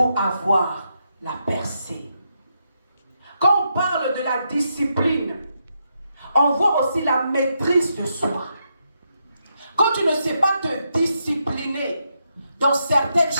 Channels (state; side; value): inverted; both; correlation -0.82